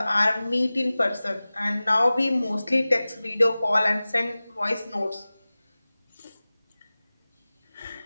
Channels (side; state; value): both; inverted; correlation -0.98